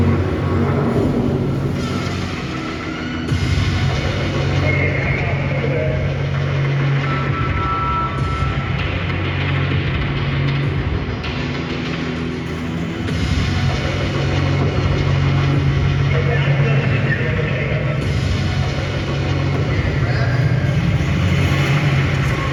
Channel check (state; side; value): identical; both; correlation 1.00